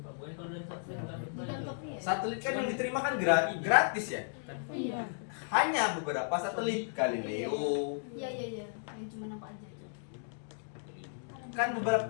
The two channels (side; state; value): right; silent; digital silence